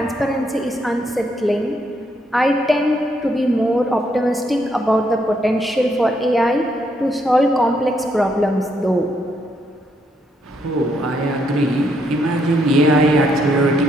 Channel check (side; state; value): both; normal; correlation 0.75